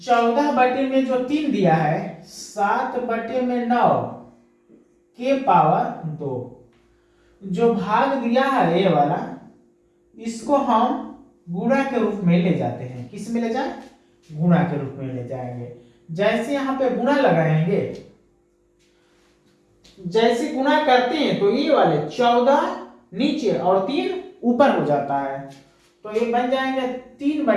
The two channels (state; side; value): identical; both; correlation 1.00